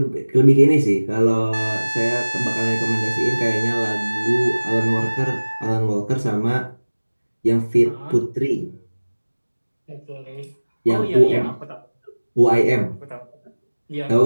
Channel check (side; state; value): both; inverted; correlation -1.00